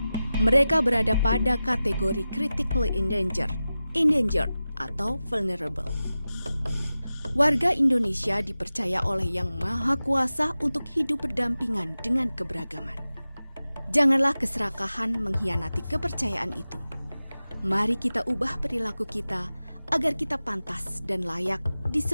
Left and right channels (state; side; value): inverted; both; correlation -0.95